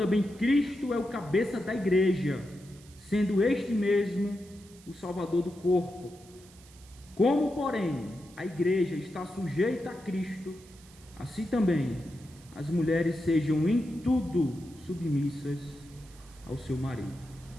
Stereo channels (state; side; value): noise; right; hiss, 24 dB below the sound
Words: Cristo é o cabeça da igreja, sendo este mesmo o Salvador do corpo. Como, porém, a igreja está sujeita a Cristo, assim também as mulheres sejam em tudo submissas ao seu marido.